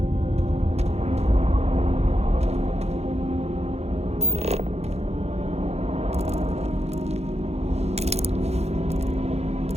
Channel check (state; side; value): late; left; 0.31 ms